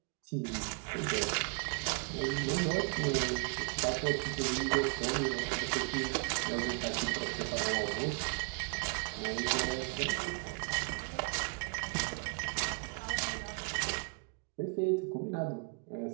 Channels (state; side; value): quieter; left; 37.1 dB